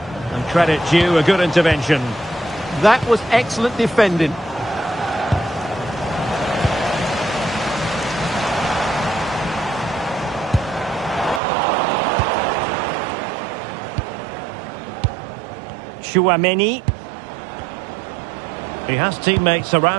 And credit due, a good intervention. That was excellent defending. Chouameni. He has teammates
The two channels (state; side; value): drops out; left; at 11.4 s